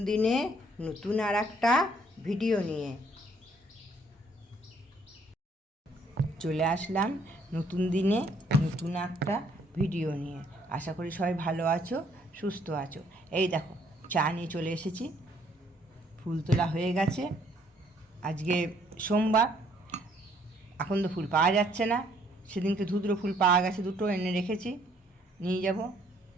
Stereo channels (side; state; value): both; normal; correlation 0.65